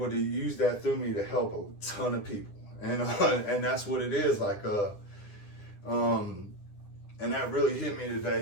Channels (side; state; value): right; late; 9.9 ms